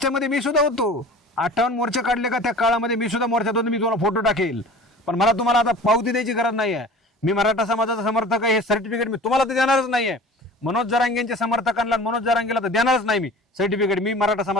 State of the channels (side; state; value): both; normal; correlation 0.42